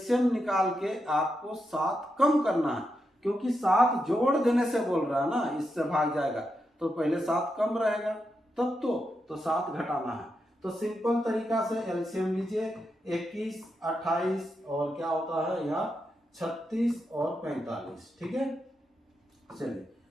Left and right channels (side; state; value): both; normal; correlation 0.85